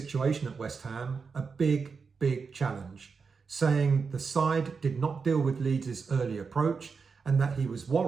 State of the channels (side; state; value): left; quieter; 5.2 dB